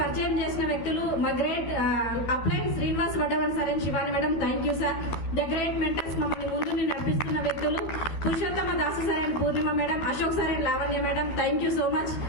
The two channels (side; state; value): right; late; 12 ms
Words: చేసిన వ్యక్తులు మా గ్రేట్ అప్లైన్ Srinivas Vaddavan sir and Shivani madam, thank you sir. The great mentors, మమ్మల్ని ముందు నడిపిస్తున్న వ్యక్తులు Purushottama Dasu sir and Purnima madam, Ashok sir and Lavanya madam, thank you so much.